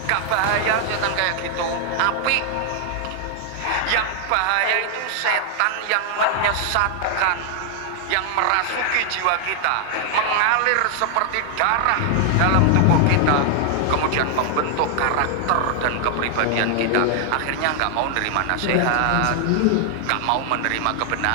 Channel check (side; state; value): both; different; correlation 0.00